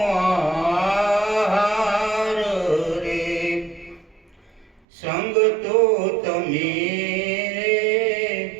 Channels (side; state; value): left; drops out; at 4.8 s